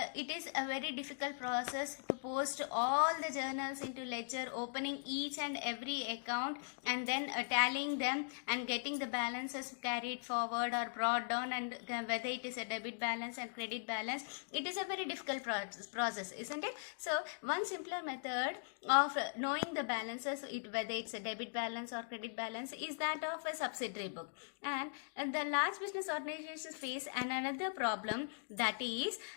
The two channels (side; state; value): right; silent; digital silence